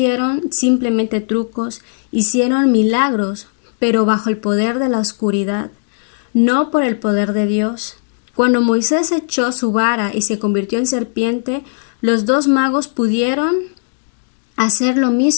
simplemente trucos, hicieron milagros, pero bajo el poder de la oscuridad, no por el poder de Dios. Cuando Moisés echó su vara y se convirtió en serpiente, los dos magos pudieron hacer lo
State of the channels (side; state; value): right; silent; digital silence